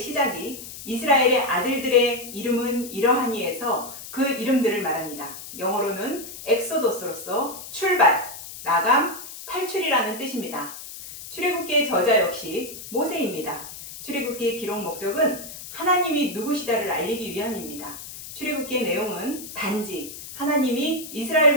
시작이 이스라엘의 아들들의 이름은 이러하니에서 그 이름들을 말합니다. 영어로는 엑소도스로서 출발, 나감, 탈출이라는 뜻입니다. 출애굽기의 저자 역시 모세입니다. 출애굽기의 기록 목적은 하나님이 누구시다를 알리기 위함입니다. 출애굽기의 내용은 단지 하나님이 이스라엘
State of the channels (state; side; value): noise; left; hiss, 12 dB below the sound